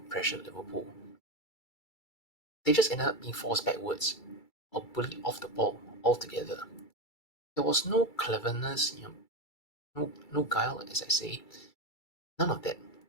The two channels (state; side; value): late; right; 2.3 ms